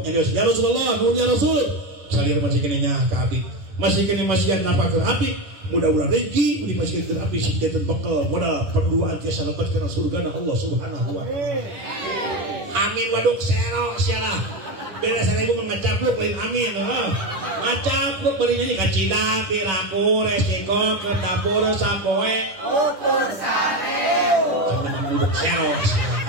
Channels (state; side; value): late; left; 10 ms